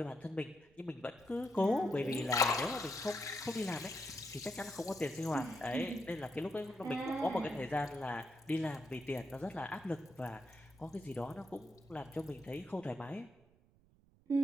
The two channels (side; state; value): right; noise; rumble, 29 dB below the sound